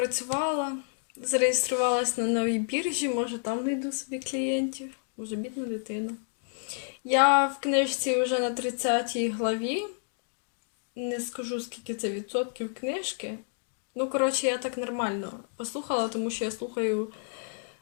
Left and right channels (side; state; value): right; silent; digital silence